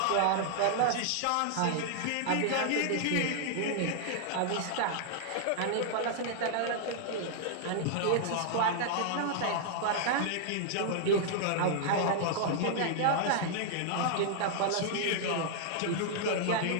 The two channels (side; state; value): both; different; correlation -0.01